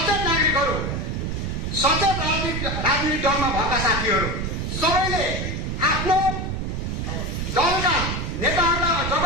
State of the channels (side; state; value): right; noise; rumble, 2 dB below the sound